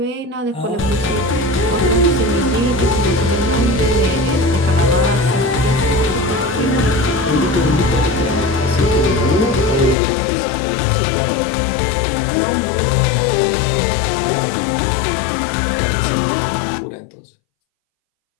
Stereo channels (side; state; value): right; drops out; at 10.0 s